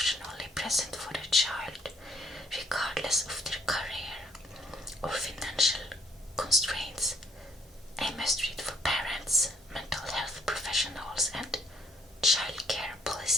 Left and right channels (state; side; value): normal; both; correlation 0.66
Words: present for their child, regardless of their career or financial constraints. A must-read for parents, mental health professionals, and childcare